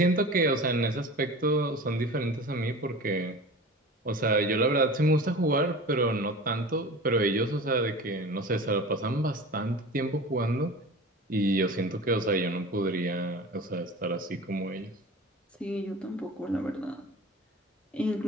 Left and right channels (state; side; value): normal; both; correlation 0.36